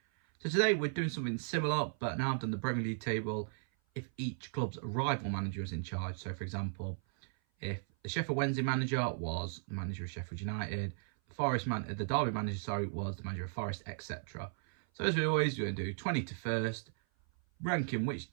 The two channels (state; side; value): silent; left; 54 dB below the other